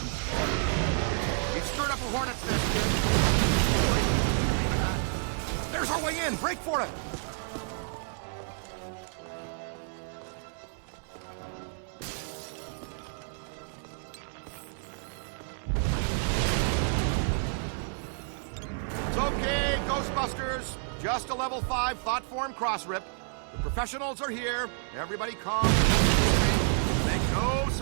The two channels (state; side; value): silent; left; digital silence